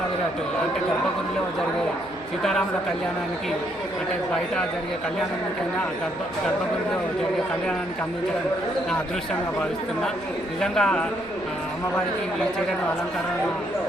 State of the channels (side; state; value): right; noise; hum, 23 dB below the sound